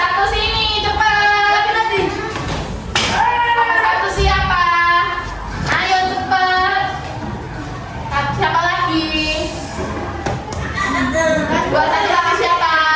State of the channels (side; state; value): both; identical; correlation 1.00